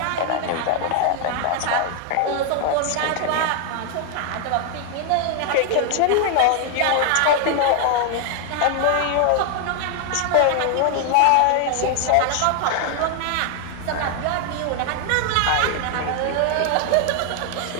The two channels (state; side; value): different; both; correlation 0.00